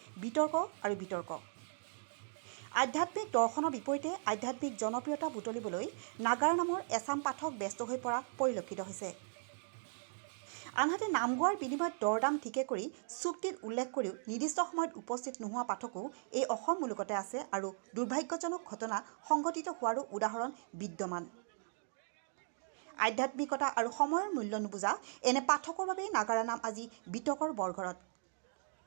বিতৰ্ক আৰু বিতৰ্ক। আধ্যাত্মিক দৰ্শনৰ বিপৰীতে আধ্যাত্মিক জনপ্ৰিয়তা বুটলিবলৈ নাগাৰা নামৰ এচাম পাঠক ব্যস্ত হৈ পৰা পৰিলক্ষিত হৈছে। আনহাতে নাম গোৱাৰ বিনিময়ত দৰদাম ঠিকে কৰি চুক্তিত উল্লেখ কৰিও নিৰ্দিষ্ট সময়ত উপস্থিত নোহোৱা পাঠকো এই অসম মুলুকতে আছে আৰু দুৰ্ভাগ্যজনক ঘটনা সংঘটিত হোৱাৰো উদাহৰণ বিদ্যমান। আধ্যাত্মিকতা আৰু সময়ৰ মূল্য নুবুজা এনে পাঠকৰ বাবেই নাগাৰা নাম আজি বিতৰ্কৰ বৰঘৰত।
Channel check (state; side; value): silent; left; digital silence